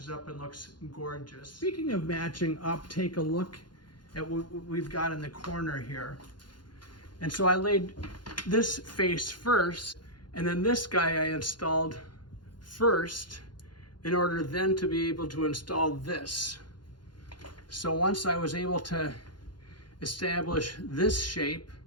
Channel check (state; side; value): late; right; 0.71 ms